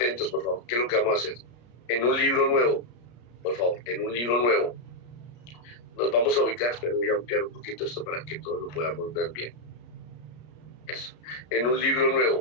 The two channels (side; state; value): right; late; 33 ms